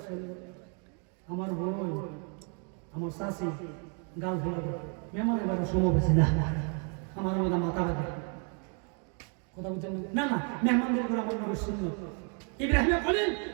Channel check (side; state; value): left; quieter; 39.8 dB